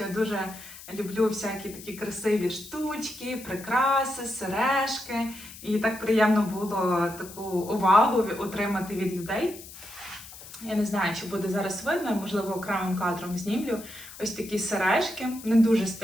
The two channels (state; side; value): noise; left; hiss, 16 dB below the sound